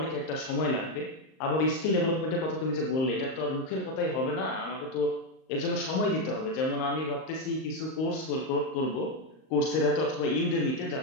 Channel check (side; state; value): right; late; 38 ms